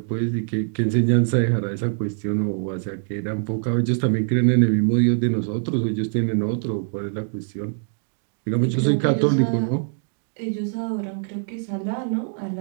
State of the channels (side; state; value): left; silent; digital silence